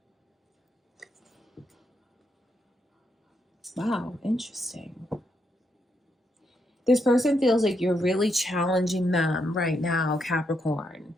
Wow, interesting. This person feels like you're really challenging them right now, Capricorn,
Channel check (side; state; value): both; normal; correlation 0.79